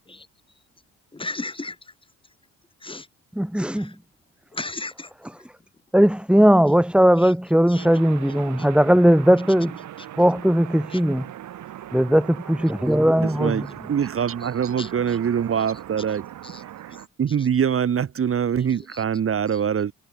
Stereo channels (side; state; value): both; normal; correlation 0.83